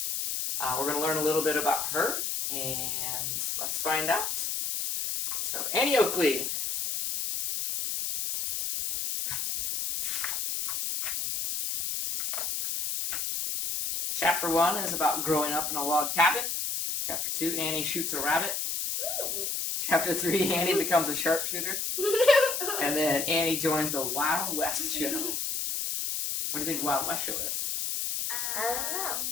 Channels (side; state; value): left; noise; hiss, 1 dB below the sound